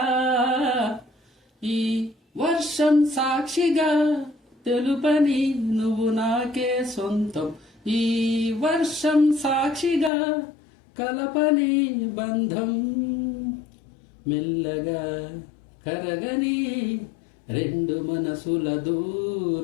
ఈ వర్షం సాక్షిగా తెలుపని నువ్వు నాకే సొంతం, ఈ వర్షం సాక్షిగా కలపని బంధం, మెల్లగా కరగని రెండు మనసుల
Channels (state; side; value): drops out; right; at 10.1 s